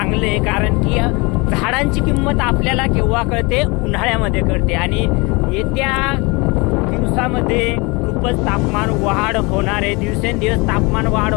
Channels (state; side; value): quieter; right; 27.1 dB